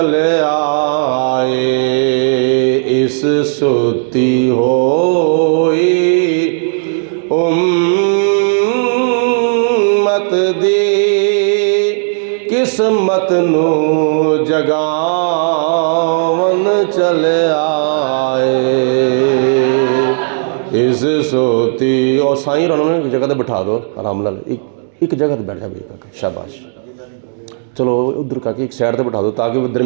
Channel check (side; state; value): left; silent; digital silence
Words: आए। इस सुती होई उम्मत दी किस्मत नू जगावन चले आए। इस सोती और साईं उन्होंने एक जगह पर बिठा दो आराम नाल, एक जगह पर बैठ जा भाई, शाबाश। चलो उधर का एक साइड पर बिठा दो ताकि वो